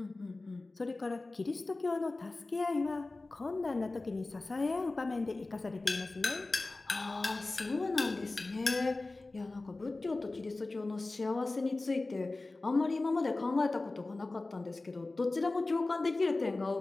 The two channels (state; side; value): quieter; right; 3.2 dB